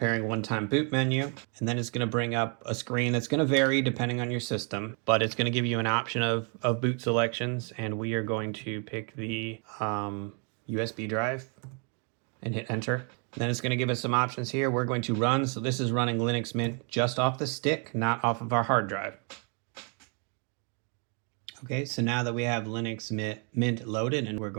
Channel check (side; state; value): left; quieter; 37.6 dB